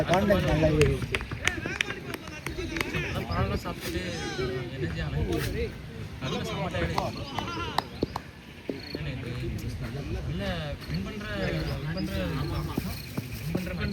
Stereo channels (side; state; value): both; identical; correlation 1.00